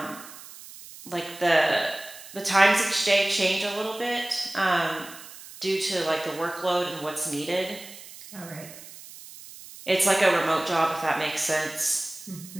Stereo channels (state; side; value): noise; right; hiss, 16 dB below the sound